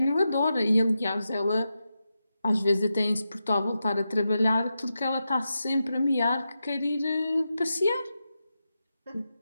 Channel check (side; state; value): both; inverted; correlation -0.89